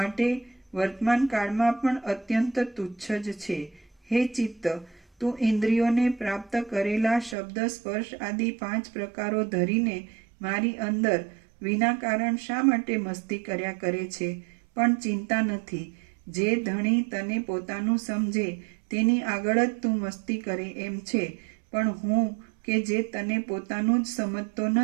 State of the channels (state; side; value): drops out; left; at 7.4 s